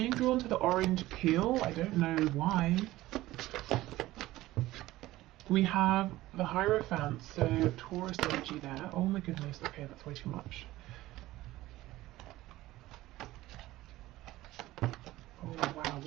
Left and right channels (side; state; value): left; quieter; 16.9 dB